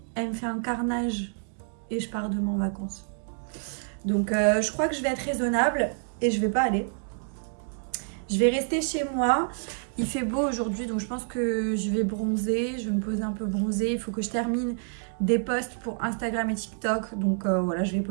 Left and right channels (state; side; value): silent; left; 59 dB below the other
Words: elle me fait un carnage et je pars demain en vacances. Donc je crois que je vais être raisonnable et je vais pas aller. Je vais rester chez moi. Il fait beau aujourd'hui, donc je pense que je vais bronzer. Je vais me poser un peu bronzer. Il faut que je termine des posts pour Instagram et TikTok. Donc voilà, je vais